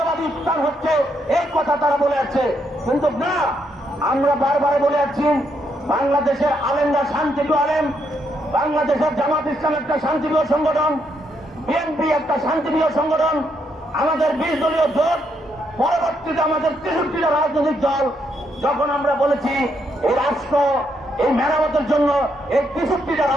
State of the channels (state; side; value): normal; both; correlation 0.76